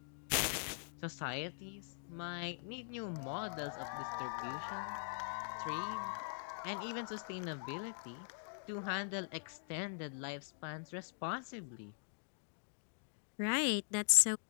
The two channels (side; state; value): right; silent; digital silence